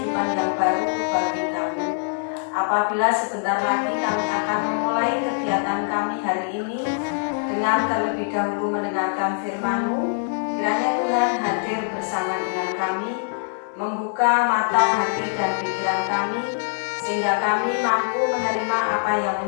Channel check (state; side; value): silent; right; digital silence